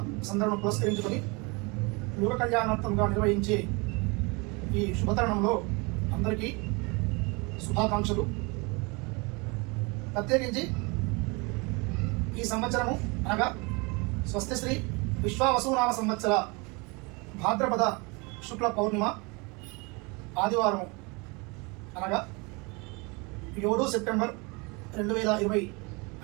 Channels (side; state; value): left; quieter; 28.5 dB